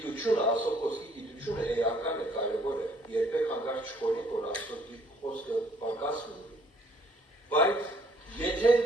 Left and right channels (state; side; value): normal; both; correlation 0.61